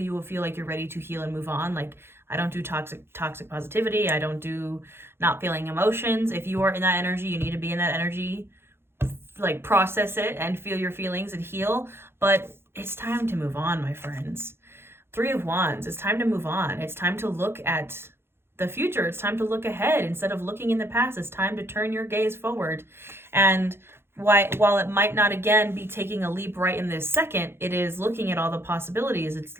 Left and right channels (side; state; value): left; late; 0.11 ms